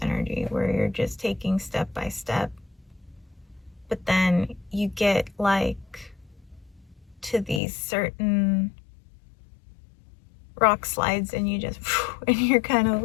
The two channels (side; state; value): right; drops out; at 7.6 s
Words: energy, where you're just taking step by step, but then you get like to these certain rock slides, and you just and you're kind of